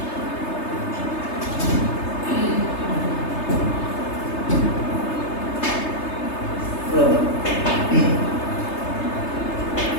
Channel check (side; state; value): right; late; 3.3 ms